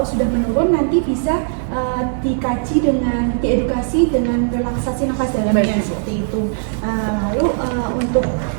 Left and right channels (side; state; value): left; silent; digital silence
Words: sudah menurun nanti bisa dikaji dengan diedukasi dengan relaksasi nafas dalamnya seperti itu. Lalu untuk